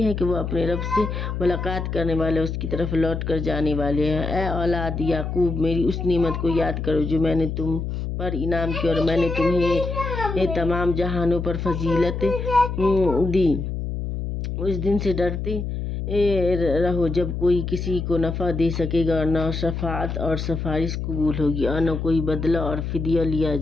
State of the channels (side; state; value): left; noise; hum, 4 dB below the sound